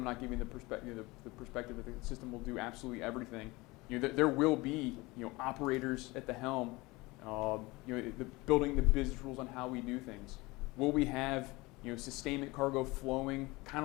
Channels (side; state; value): right; quieter; 22.6 dB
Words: not giving the perspective that the system will do absolutely everything. There will be operators at the helm, building the business rules on how we do things. Will we have sustainment cargo flowing kind